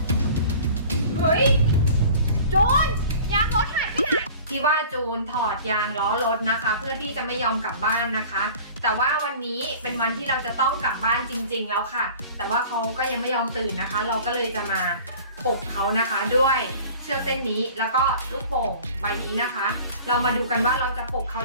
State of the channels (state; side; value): inverted; both; correlation -0.43